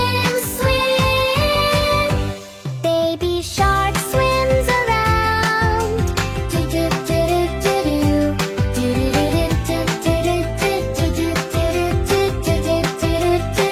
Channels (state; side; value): identical; both; correlation 1.00